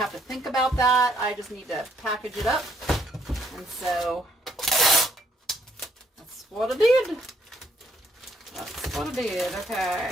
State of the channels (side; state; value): both; normal; correlation 0.69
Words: to think about that. I just need to package it up, and so that's what I did. That's what I did.